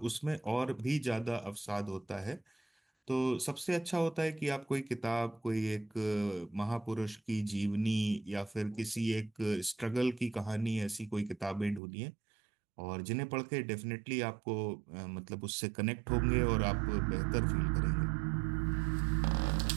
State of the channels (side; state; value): left; drops out; at 11.8 s